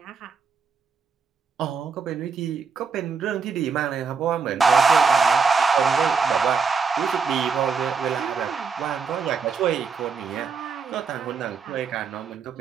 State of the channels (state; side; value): quieter; left; 5.5 dB